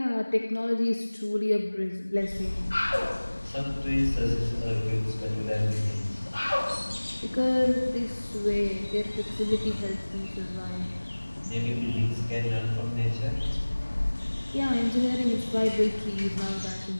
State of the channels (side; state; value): both; inverted; correlation -1.00